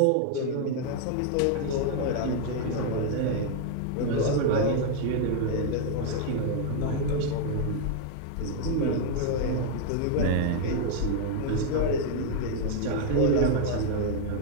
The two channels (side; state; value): both; different; correlation 0.00